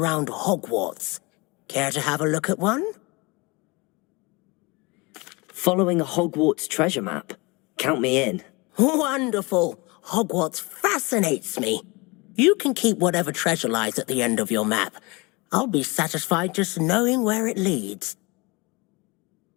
Hogwarts. Care to have a look at one? Following a Hogwarts treasure map. Count me in. Wonderful! Hogwarts fascinates me. You can keep whatever treasure lies at the end of your map. I'll be satisfied just knowing where it leads.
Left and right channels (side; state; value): right; quieter; 26.3 dB